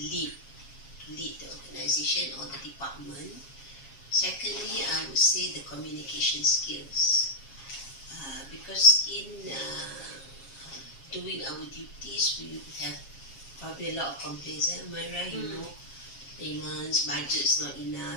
the organization or the department. Secondly, I would say the communication skills. Because in doing our duties, we have probably a lot of complaints. Am I right? You know, payments, budget's not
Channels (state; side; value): late; right; 7.4 ms